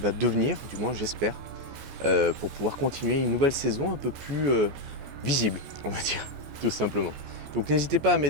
devenir, du moins j'espère, pour pouvoir continuer une nouvelle saison un peu plus visible, on va dire, tout simplement. Donc n'hésitez pas à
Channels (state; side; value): late; left; 15 ms